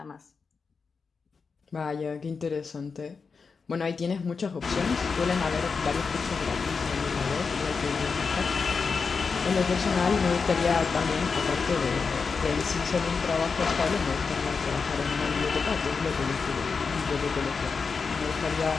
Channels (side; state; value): right; quieter; 5.1 dB